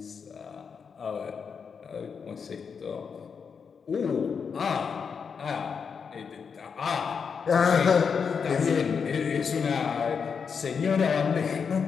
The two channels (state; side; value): quieter; right; 6.1 dB